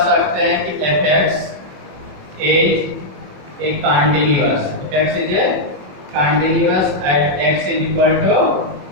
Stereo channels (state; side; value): late; left; 21 ms